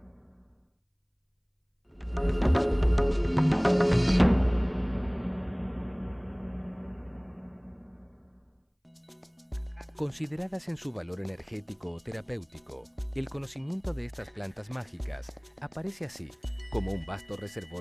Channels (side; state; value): both; identical; correlation 1.00